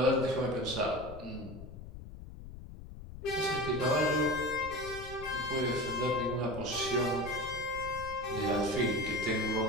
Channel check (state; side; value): noise; left; rumble, 13 dB below the sound